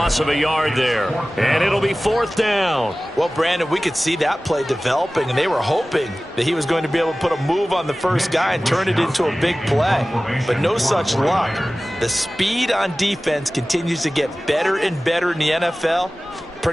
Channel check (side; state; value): both; normal; correlation 0.97